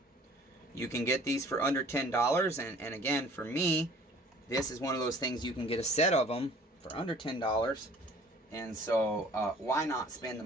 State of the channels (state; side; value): normal; both; correlation 0.52